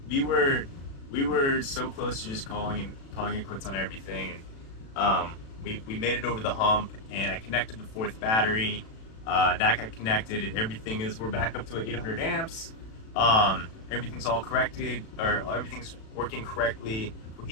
We were so close to just calling it quits on everything. And we made it over the hump. And I connected the fourth battery. That got connected. And everything is. We're back up to 800 amps. Everything's all corrected, or everything's working correctly,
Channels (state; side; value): late; right; 36 ms